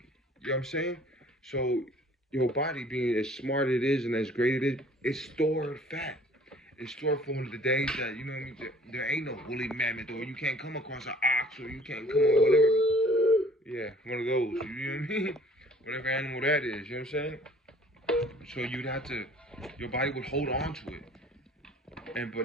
You know what I'm saying? So your body, being as smart it is and as great it is, it's stored fat. It's stored for the days that, you know what I mean, there ain't no woolly mammoth, or you can't come across an ox, or you can't come on whatever. Yeah, one of those. You know what I mean? Whatever animal that is. You know what I'm saying? So you'd have to, your body would hold on to it.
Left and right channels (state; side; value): normal; both; correlation 0.53